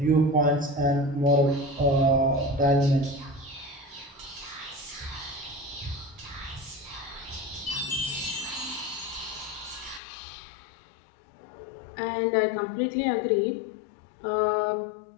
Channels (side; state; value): right; drops out; at 10.0 s